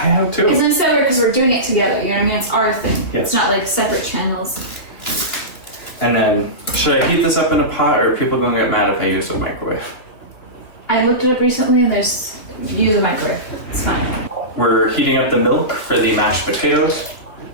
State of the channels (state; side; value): late; right; 3.0 ms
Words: too. It's nice because we're doing it together. You know what I mean? It's our thing. Yes. It's not like separate channels. And then, should I heat this up in a pot, or are people gonna get mad if I use a microwave? I looked it up recently, and use a microwave. It's fine. We're heating up the milk for the mashed potatoes.